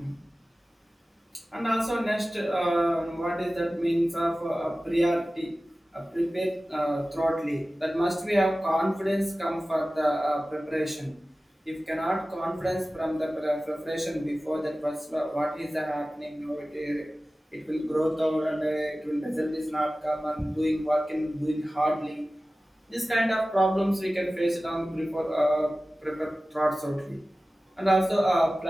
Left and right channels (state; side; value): normal; both; correlation 0.96